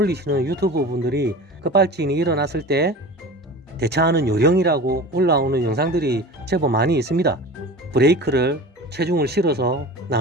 유튜브 분들이 급발진이 일어났을 때 대처하는 요령이라고 올라오는 영상들이 제법 많이 있습니다. 브레이크를 체중을 실어서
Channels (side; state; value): both; normal; correlation 0.35